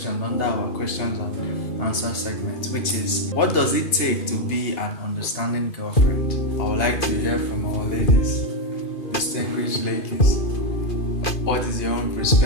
under our questions and answer segment, which is, what does it take to be an understanding girlfriend? I would like to hear from our ladies, distinguished ladies. What is your own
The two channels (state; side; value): late; right; 2.5 ms